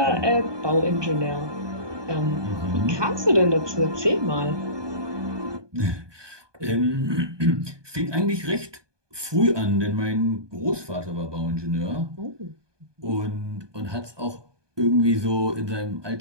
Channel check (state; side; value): late; left; 1.2 ms